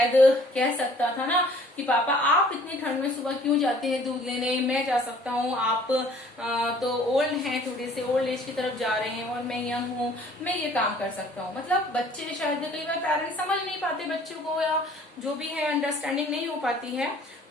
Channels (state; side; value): normal; both; correlation 0.55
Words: कह सकता था ना कि पापा आप इतनी ठंड में सुबह क्यों जाते हैं दूध लेने, मैं जा सकता हूँ, आप तो ओल्ड हैं, थोड़े से ओल्ड एज की तरफ जा रहे हैं और मैं यंग हूँ, मैं ये काम कर सकता हूँ। मतलब बच्चे शायद कई बार पेरेंट्स समझ नहीं पाते बच्चों को, या जो भी है अंडरस्टैंडिंग नहीं हो पाती है,